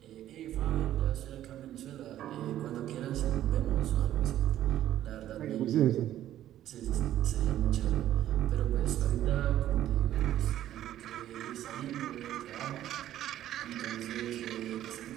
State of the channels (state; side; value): quieter; left; 12.5 dB